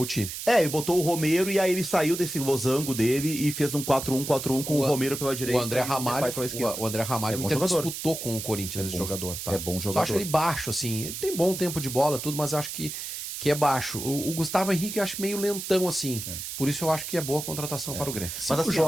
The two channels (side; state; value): right; noise; hiss, 7 dB below the sound